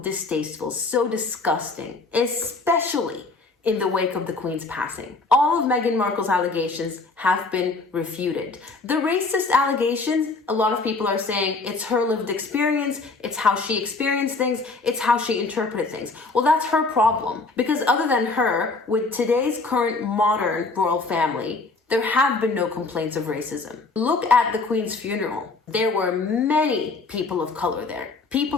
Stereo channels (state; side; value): quieter; right; 3.7 dB